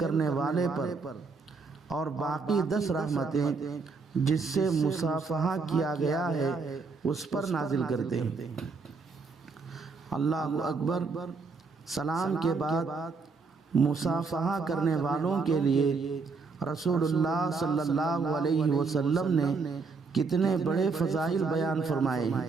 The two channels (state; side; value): quieter; left; 4.5 dB